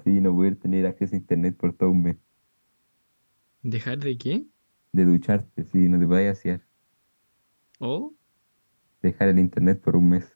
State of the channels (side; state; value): both; inverted; correlation -1.00